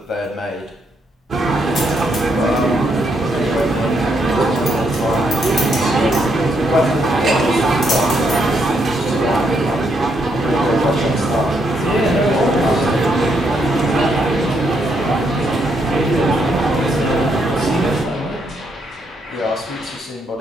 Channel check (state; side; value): normal; both; correlation 0.76